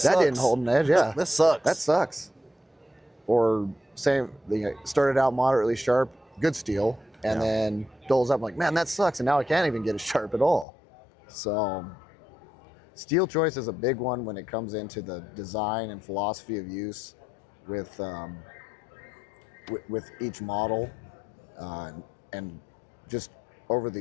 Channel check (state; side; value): drops out; right; at 10.7 s